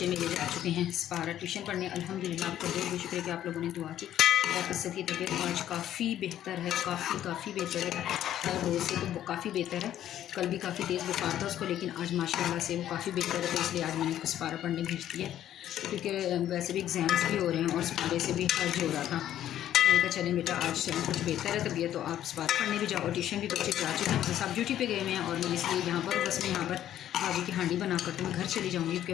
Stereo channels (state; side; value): quieter; right; 11.6 dB